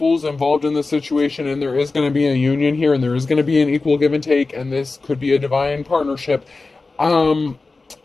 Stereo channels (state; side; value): quieter; right; 3.7 dB